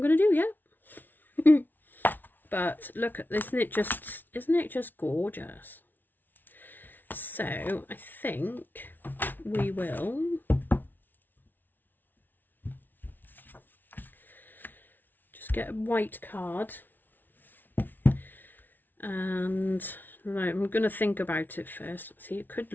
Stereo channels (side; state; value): right; late; 0.088 ms